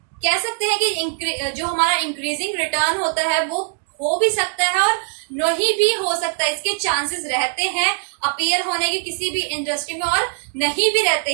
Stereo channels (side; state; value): left; silent; digital silence